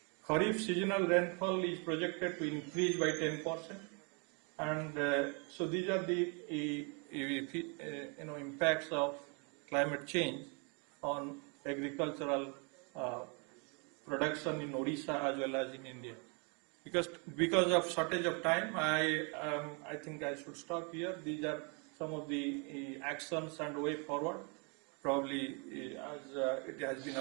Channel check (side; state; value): left; quieter; 35.1 dB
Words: Kharif seasonal rainfall is projected to increase by 10%, and so these are the impacts of climate change on agricultural production in Odisha as well as in India. Because of shortage of time, I think I should stop here. These are some of the actions and way forward. Probably as it has been